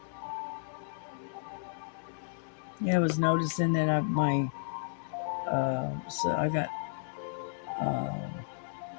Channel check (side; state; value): right; silent; 56 dB below the other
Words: Yeah, I was noticing that so I got